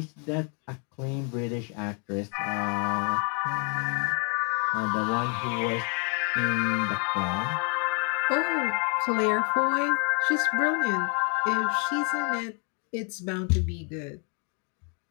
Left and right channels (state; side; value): quieter; right; 38.3 dB